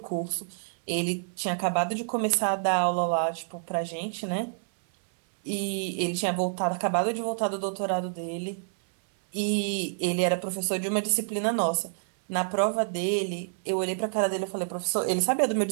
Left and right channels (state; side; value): silent; left; 59 dB below the other